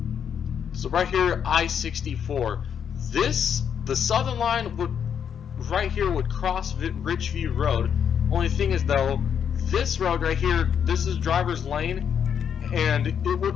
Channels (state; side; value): quieter; right; 7.9 dB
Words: So right here, I-64. The southern line would right here would cross Ridgeview Road. Only thing is though, this road right here, this is Driver's Lane, and it